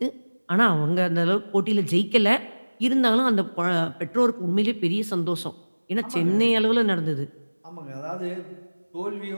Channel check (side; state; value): both; inverted; correlation -1.00